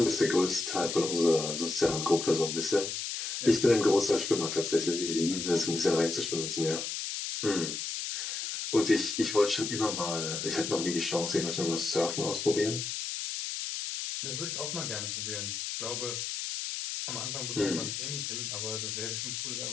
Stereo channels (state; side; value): noise; left; hiss, 4 dB below the sound